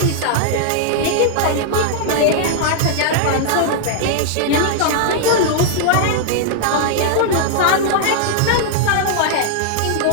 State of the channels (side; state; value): both; different; correlation -0.01